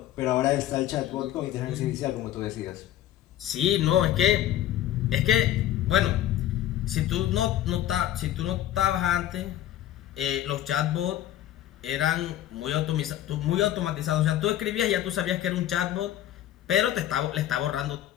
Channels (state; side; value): quieter; right; 12.4 dB